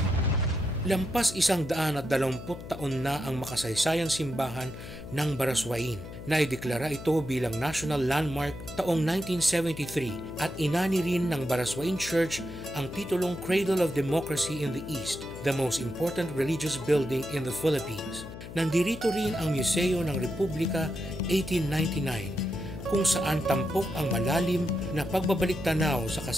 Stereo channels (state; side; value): noise; left; hum, 12 dB below the sound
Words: Lampas 120 taon na ang makasaysayang simbahan ng Baraswain. Naideklara ito bilang National Landmark taong 1973 at inani rin ng Baraswain Church ang titulong Cradle of Democracy in the East, the most important religious building in the Philippines. Nandirito rin ang Museo ng Republika 1899 kung saan tampok ang malalim na pagbabalik-tanaw sa